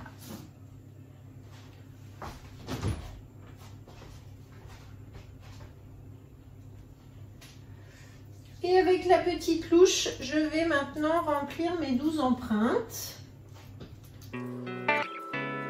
Et avec la petite louche, je vais maintenant remplir mes 12 empreintes.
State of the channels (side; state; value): both; identical; correlation 1.00